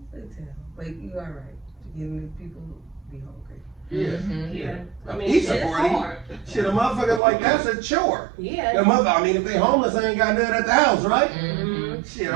they tell, like you are right. Getting these people be hungry. Yeah. Mhm. Yeah. A I mean, pizza it's party. hard. Shit, a motherfucker like that's a chore. Yeah. The mother, I mean, if they homeless, they ain't got nothing at the house, right? Mhm. Shit,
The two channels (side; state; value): left; drops out; at 7.2 s